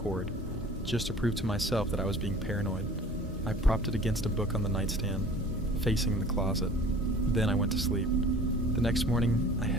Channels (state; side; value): normal; both; correlation 0.46